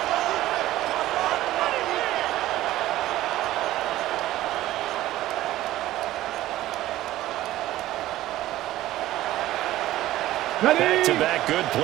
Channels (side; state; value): left; quieter; 15.1 dB